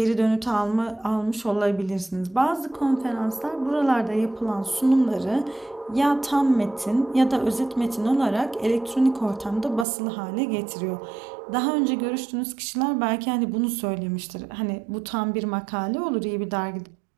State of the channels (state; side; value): drops out; left; at 9.9 s